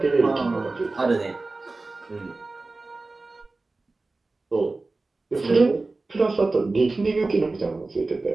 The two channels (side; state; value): left; quieter; 3.4 dB